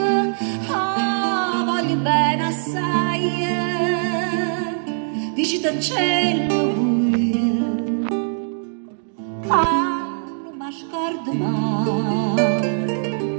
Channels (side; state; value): left; silent; digital silence